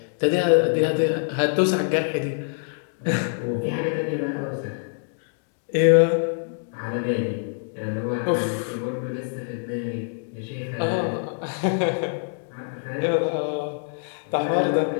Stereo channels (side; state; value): right; silent; digital silence